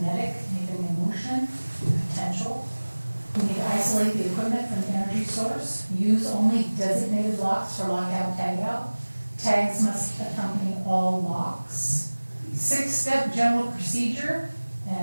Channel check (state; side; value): inverted; both; correlation -1.00